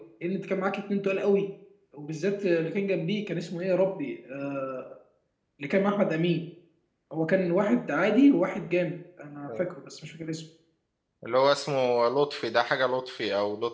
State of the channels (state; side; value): identical; both; correlation 1.00